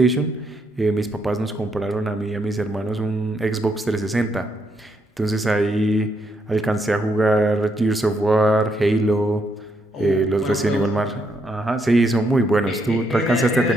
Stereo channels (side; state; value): both; normal; correlation 0.76